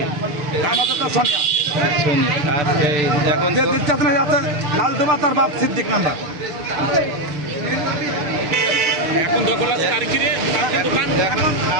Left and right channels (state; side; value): late; left; 6.8 ms